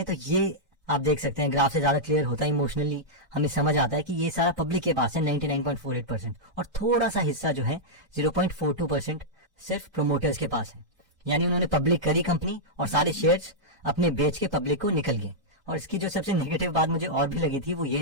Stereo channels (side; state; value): left; late; 1.3 ms